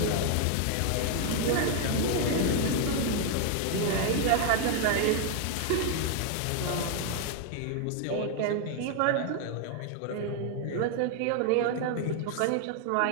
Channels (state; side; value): different; both; correlation 0.00